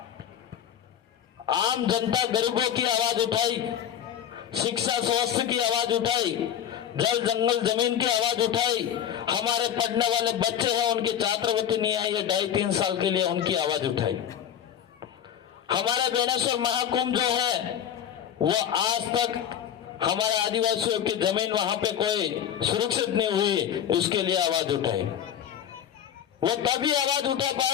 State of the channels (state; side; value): quieter; right; 9.5 dB